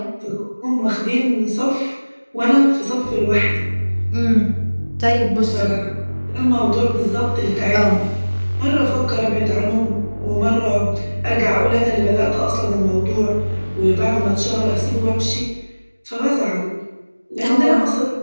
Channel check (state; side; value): inverted; both; correlation -1.00